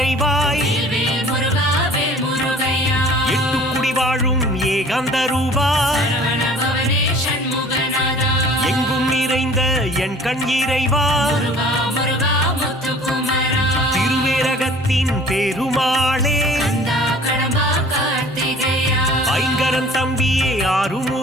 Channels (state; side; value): normal; both; correlation 0.48